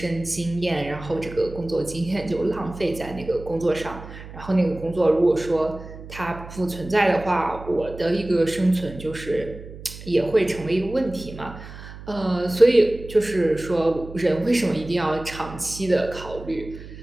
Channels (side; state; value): right; noise; hum, 14 dB below the sound